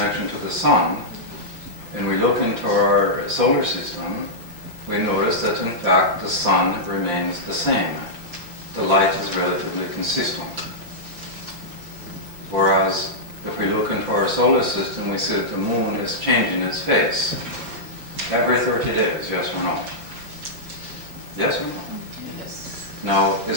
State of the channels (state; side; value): late; left; 5.8 ms